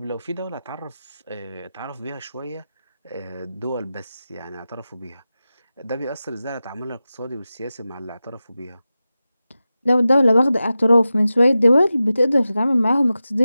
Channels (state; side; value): inverted; both; correlation -0.93